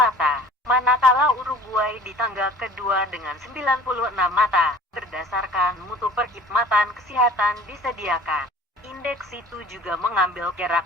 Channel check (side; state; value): both; normal; correlation 0.47